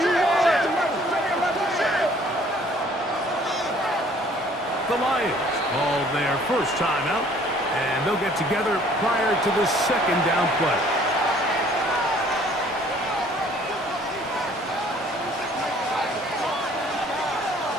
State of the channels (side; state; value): both; normal; correlation 0.57